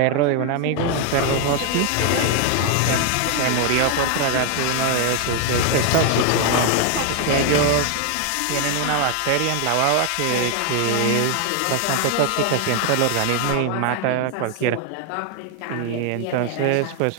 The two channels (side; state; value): both; different; correlation 0.01